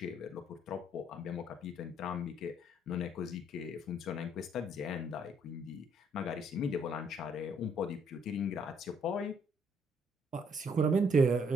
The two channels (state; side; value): normal; both; correlation 0.67